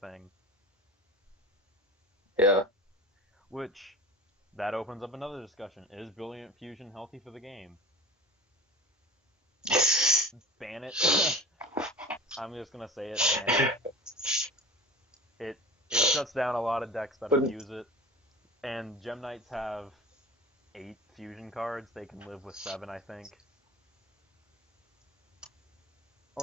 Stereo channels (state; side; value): normal; both; correlation 0.36